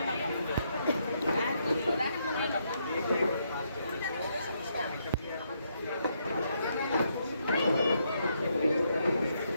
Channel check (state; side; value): inverted; both; correlation -0.76